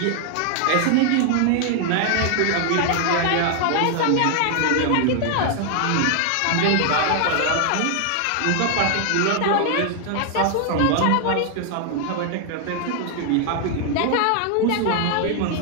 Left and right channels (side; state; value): both; different; correlation 0.00